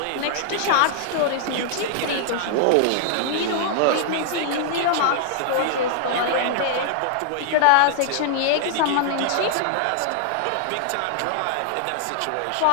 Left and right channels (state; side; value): different; both; correlation -0.01